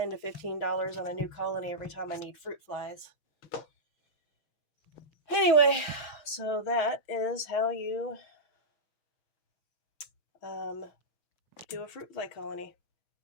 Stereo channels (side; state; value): right; late; 6.3 ms